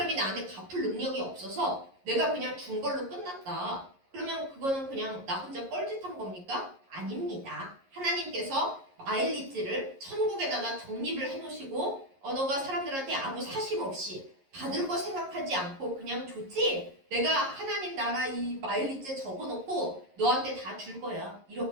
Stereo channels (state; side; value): late; left; 11 ms